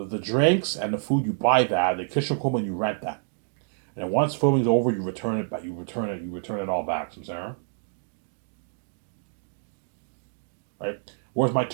drinks and the food, you buy that. The kitchen equipment, you rent that. And then once filming's over, you return it back. You return it all back. So, Sarah, right? Whereas my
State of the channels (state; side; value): silent; left; digital silence